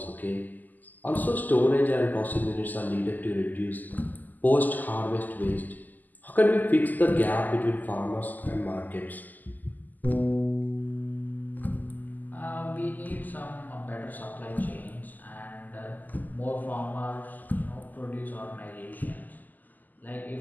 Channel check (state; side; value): late; right; 0.084 ms